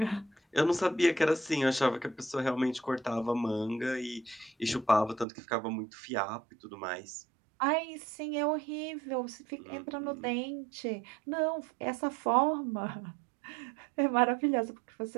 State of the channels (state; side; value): drops out; left; at 5.2 s